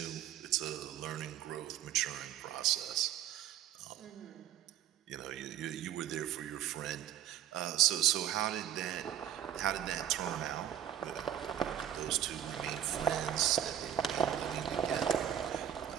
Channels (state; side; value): quieter; left; 10.5 dB